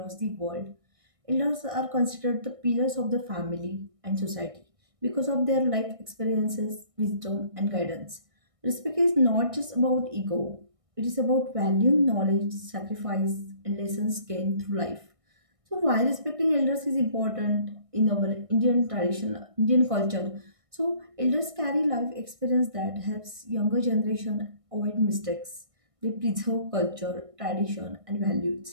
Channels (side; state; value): left; late; 1.6 ms